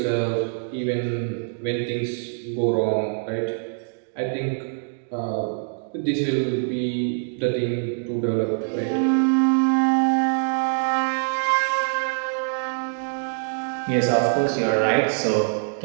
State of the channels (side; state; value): left; silent; digital silence